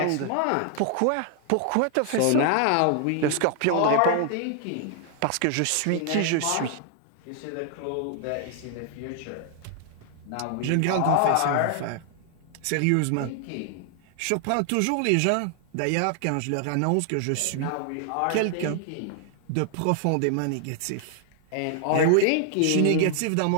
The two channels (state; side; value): different; both; correlation 0.00